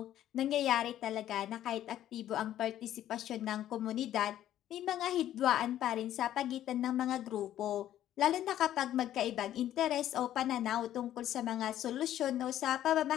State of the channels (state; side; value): quieter; right; 12.1 dB